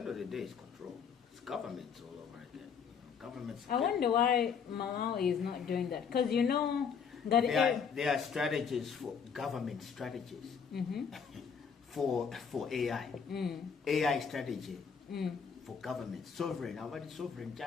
of the day, it's control. It's governments all over again. Governments. I wonder why Malawi is not doing that. Because that there are strategies for government strategies for AI. AI strategy for government. Sovereign. How about sovereign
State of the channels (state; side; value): quieter; right; 6.5 dB